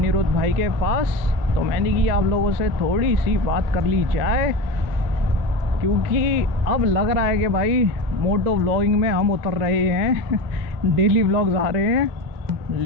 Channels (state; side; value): late; left; 2.0 ms